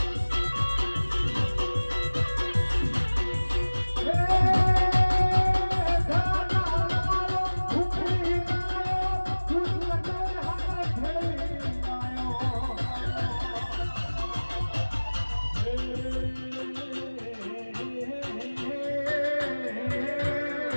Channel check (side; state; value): both; inverted; correlation -1.00